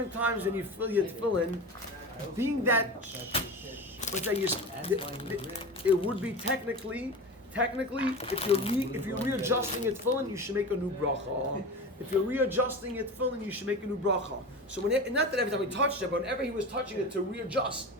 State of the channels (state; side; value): normal; both; correlation 0.29